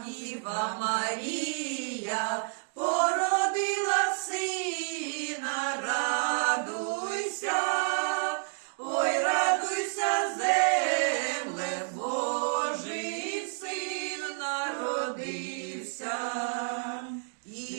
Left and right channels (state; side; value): silent; left; 56 dB below the other